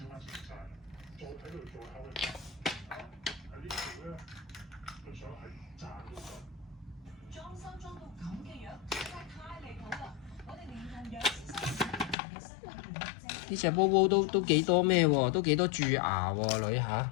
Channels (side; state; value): right; drops out; at 12.2 s